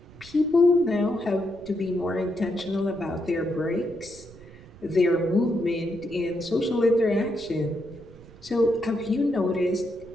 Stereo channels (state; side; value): noise; right; rumble, 21 dB below the sound